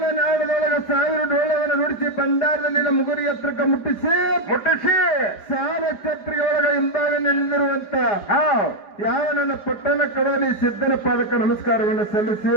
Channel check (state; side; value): late; right; 5.0 ms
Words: 1000 ಡೋಳವನ್ನು ನುಡಿಸಿ ಭಂಡಾರದಲ್ಲಿನ ಮುಗುರಿ ಎತ್ತರಕ್ಕೆ ಮುಟ್ಟಿಸಿ ಸಾಲ ಛತ್ರಿಗೆ ಒಳಗ ಹಿಂಭಾಗ ನಿಲ್ಲಿರುವಂತ ಯಾವ ನನ್ನ ಪಟ್ಟಣ ಕಡೋಲಿ ಸಿದ್ಧನ ಪಾದಕ್ಕೆ ನಮಸ್ಕಾರವನ್ನು ಸಲ್ಲಿಸಿ